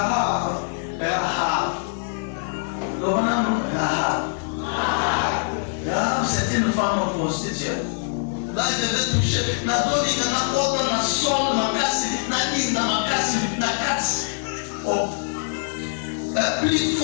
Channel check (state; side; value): silent; right; 63 dB below the other